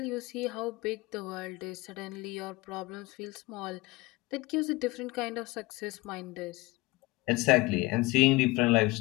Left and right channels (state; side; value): quieter; right; 21.8 dB